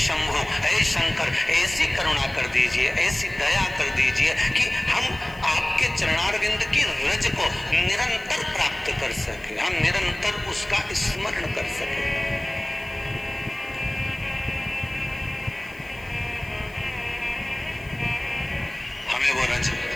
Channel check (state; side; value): noise; left; hiss, 25 dB below the sound